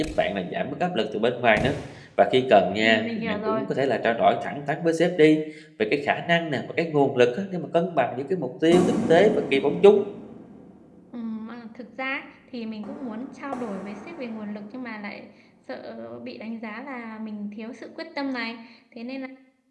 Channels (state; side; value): identical; both; correlation 1.00